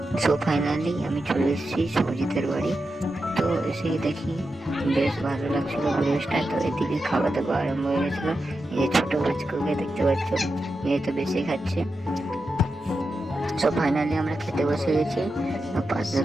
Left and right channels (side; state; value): both; normal; correlation 0.89